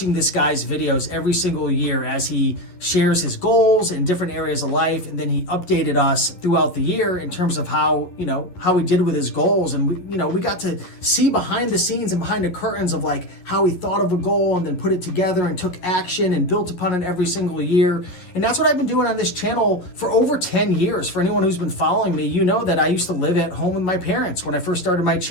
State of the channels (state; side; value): late; right; 11 ms